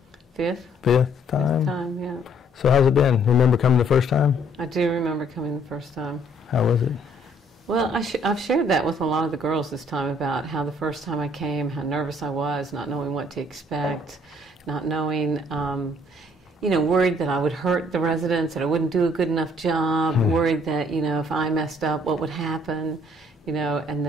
Fifth time? Fifth time, yeah. So how's it been? Remember coming the first time? I do remember coming the first time. How was it? Well, I've shared that with a lot of the girls this time about how the first time I came, how nervous I was, not knowing what to expect, not knowing, worried that I would hurt the residents, that I wouldn't do a good enough job, worried that, if I messed up, what would happen, and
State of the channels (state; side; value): normal; both; correlation 0.63